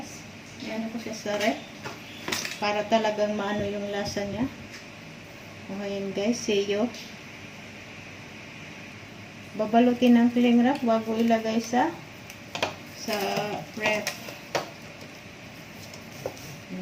Ayan ko siya sa ref. Para talagang maano yung lasa niya. Ayan guys. See you. Babalutin ng cling wrap bago ilagay sa ref.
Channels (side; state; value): both; identical; correlation 1.00